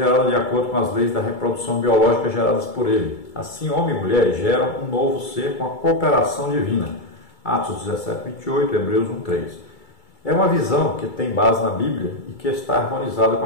de acordo com as leis da reprodução biológica geradas por ele. Assim, homem e mulher geram um novo ser com a cooperação divina. Atos 17, 28, Hebreus 1, 3. É uma visão que tem base na Bíblia e que está harmonizada com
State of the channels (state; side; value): late; right; 2.3 ms